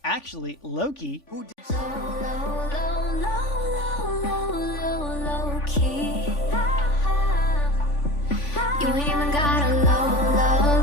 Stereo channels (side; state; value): right; late; 3.5 ms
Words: Actually, Loki... Low, key. You ain't even got a love